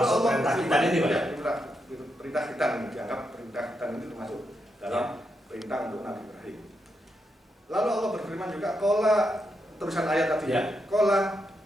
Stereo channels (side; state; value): both; normal; correlation 0.83